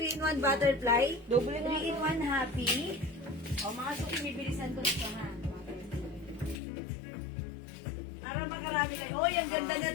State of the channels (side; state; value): right; drops out; at 6.6 s